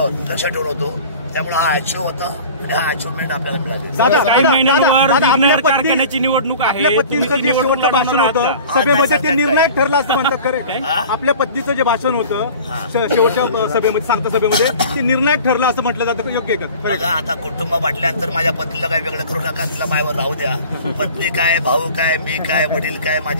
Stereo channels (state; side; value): inverted; both; correlation -0.41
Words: लक्ष ठेवून होतो. त्यामुळे हा अचीव्ह होता आणि हा अचिव्हमेंट आपल्याला मिळाली. काही महिन्यांवर विघ्नहर कारखान्याची निवडणूक आहे. आपल्या पत्नीचं जे शेवटचं भाषण होतं सभेमध्ये ते निर्णायक ठरलं असं म्हणतात खरं. आपल्या पत्नीचं जे भाषण होतं शेवटच्या सभेमध्ये सांगता सभेमध्ये ते निर्णायक ठरलं असं म्हटलं जातं, योग्य आहे का? बघा आता कुटुंब म्हटल्यानंतर माझ्या पत्नीला काही वेगळं करू नका, तिला मायावर राहू द्या. पत्नी काय, भाऊ काय, मी काय, वडील काय,